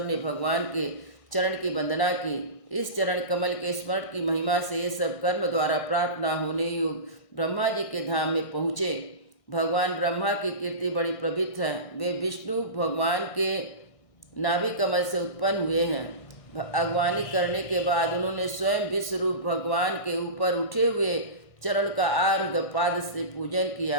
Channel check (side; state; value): right; late; 1.6 ms